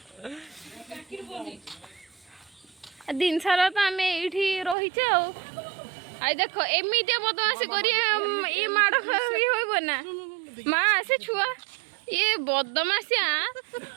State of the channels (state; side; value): drops out; left; at 4.8 s